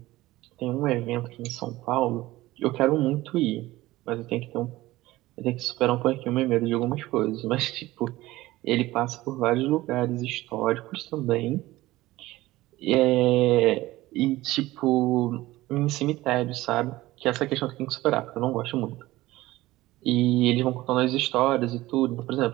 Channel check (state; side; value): quieter; left; 17.7 dB